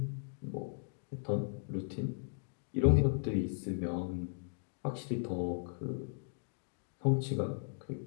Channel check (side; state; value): right; silent; digital silence